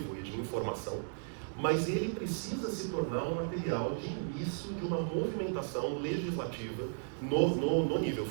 e de informação, mas ele precisa se tornar um material de início de uma movimentação legislativa no nível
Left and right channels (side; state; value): left; silent; digital silence